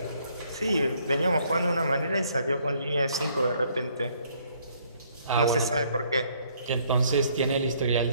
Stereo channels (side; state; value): both; inverted; correlation -0.65